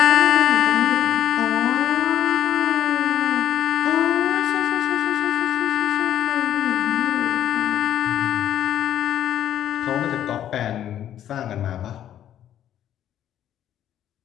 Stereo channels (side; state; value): right; quieter; 11.0 dB